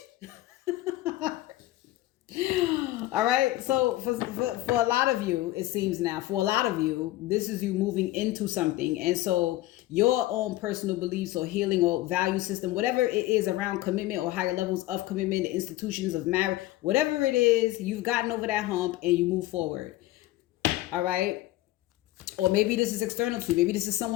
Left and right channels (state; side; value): quieter; right; 16.6 dB